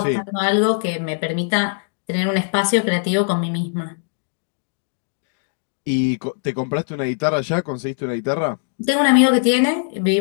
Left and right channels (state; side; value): silent; right; digital silence